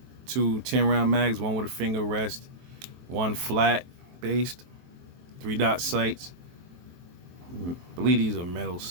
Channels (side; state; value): left; late; 23 ms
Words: two 10-round mags, one with a finger rest, one flat based, 3-dot sights. I believe these are metal